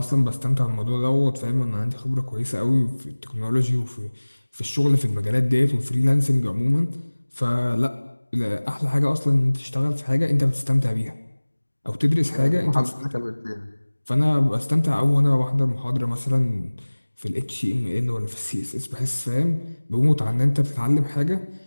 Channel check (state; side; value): inverted; both; correlation -1.00